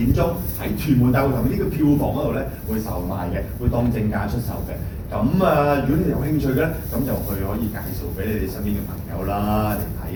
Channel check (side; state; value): both; identical; correlation 1.00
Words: 鐘喺屯門大會堂呢個票房嗰度咧會售賣嘅，會當正價出售嘅。咁如果你有興趣嘅咧，咁就可以介紹俾你哋身邊嘅朋友啦嚟